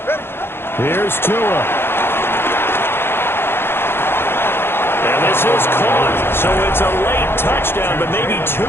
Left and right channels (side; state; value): right; late; 0.11 ms